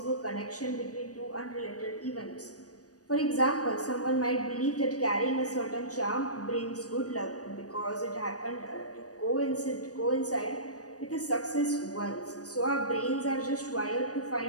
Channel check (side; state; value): right; late; 0.67 ms